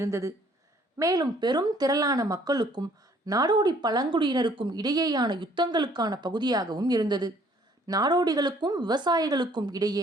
மேலும் பெரும் திரளான மக்களுக்கும் நாடோடி பழங்குடியினருக்கும் இடையேயான யுத்தங்களுக்கான பகுதியாகவும் இருந்தது. நாடோடிகளுக்கும் விவசாயிகளுக்கும்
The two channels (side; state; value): both; normal; correlation 0.60